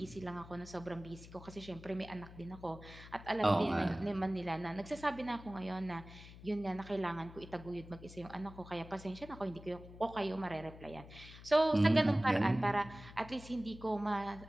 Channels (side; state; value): left; noise; hum, 16 dB below the sound